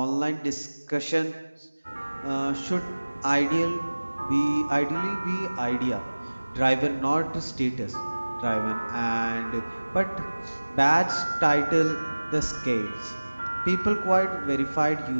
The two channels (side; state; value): both; inverted; correlation -1.00